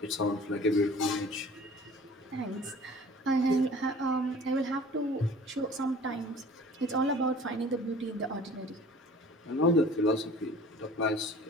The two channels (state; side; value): normal; both; correlation 0.46